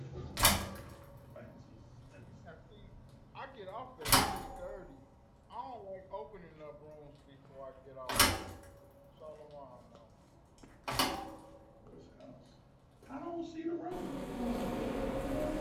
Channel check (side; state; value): both; identical; correlation 1.00